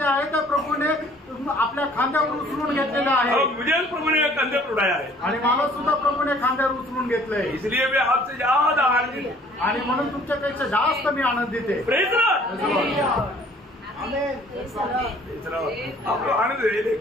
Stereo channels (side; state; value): both; normal; correlation 0.55